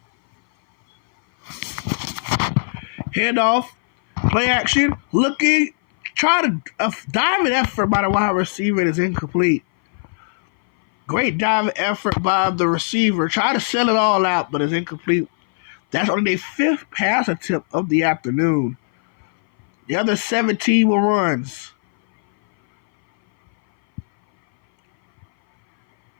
Handoff. Play action. Looking. Trying to diving effort by the wide receiver is incomplete. Great diving effort by the receiver. Try to sell it all out, but it's incomplete. That's only their 5th pass attempt of the afternoon. The other 17 were runs.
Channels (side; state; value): right; silent; 59 dB below the other